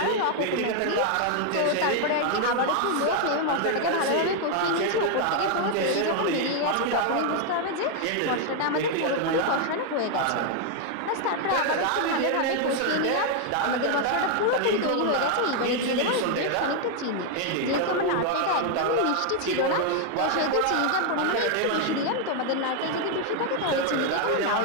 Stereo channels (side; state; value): both; different; correlation 0.00